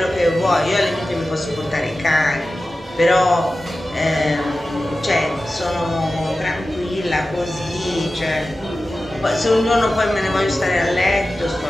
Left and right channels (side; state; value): both; normal; correlation 0.94